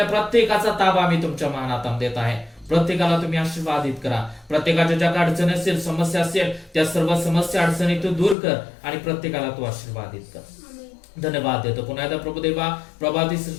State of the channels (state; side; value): drops out; right; at 8.3 s